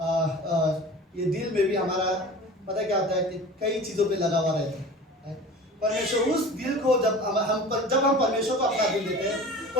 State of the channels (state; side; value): normal; both; correlation 0.38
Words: ये दिल में भी हमारा पता क्या होता है कि कई चीज़ों पे लगा हुआ रहता है। परमेश्वर उस दिल को जब हम परमेश्वर को अपना दिल देते हैं,